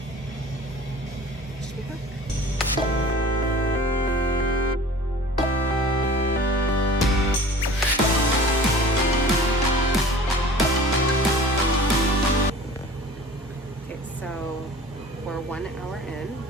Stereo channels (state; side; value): normal; both; correlation 0.43